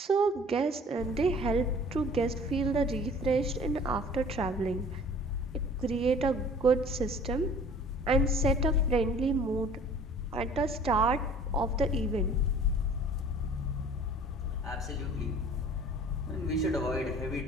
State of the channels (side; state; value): both; normal; correlation 0.49